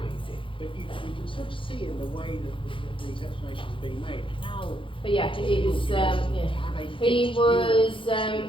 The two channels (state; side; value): late; right; 0.25 ms